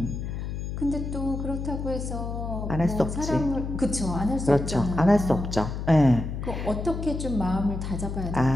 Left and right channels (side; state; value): left; noise; hum, 5 dB below the sound